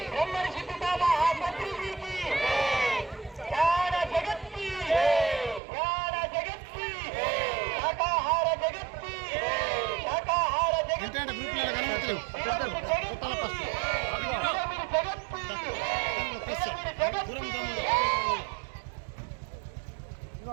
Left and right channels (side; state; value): left; drops out; at 5.6 s